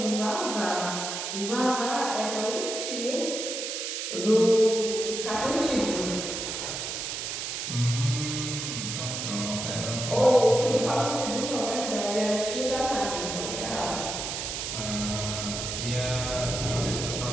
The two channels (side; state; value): right; noise; hiss, 4 dB below the sound